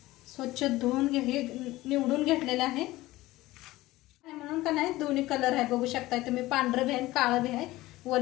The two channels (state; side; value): quieter; right; 17.9 dB